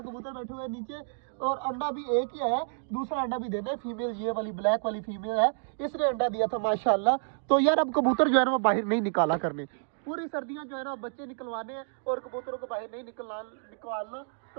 कबूतर बैठे हुए है नीचे और अंडा भी एक ही है, दूसरा अंडा भी देना है। फीमेल ये वाली ब्लैक वाली फीमेल है, इसने अंडा दिया था माशाल्लाह। तो यार अब कबूतर जो है ना वो बाहर नहीं निकाला करने, पूरी सर्दियां जो है ना बच्चे निकलवाने हैं और कबूतरों को बाहर नहीं निकालना।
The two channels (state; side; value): silent; left; digital silence